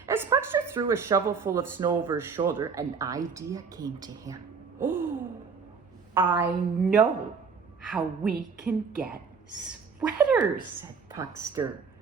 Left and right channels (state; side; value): quieter; left; 5.5 dB